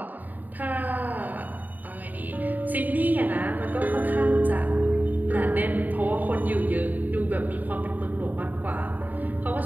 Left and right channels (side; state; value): left; late; 0.083 ms